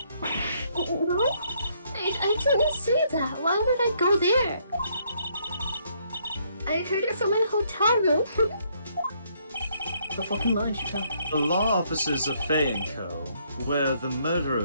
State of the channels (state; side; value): inverted; both; correlation -0.70